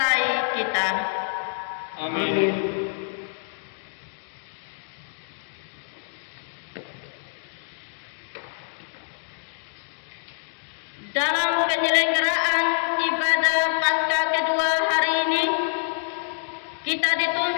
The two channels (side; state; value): right; silent; digital silence